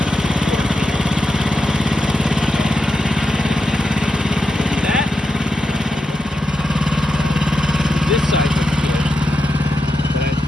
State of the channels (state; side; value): normal; both; correlation 0.87